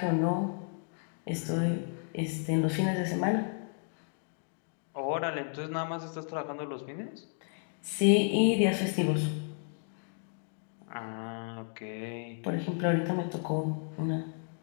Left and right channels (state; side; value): silent; right; 56 dB below the other